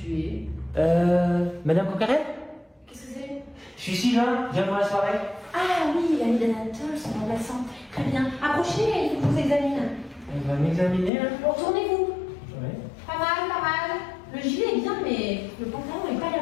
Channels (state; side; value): drops out; right; at 11.1 s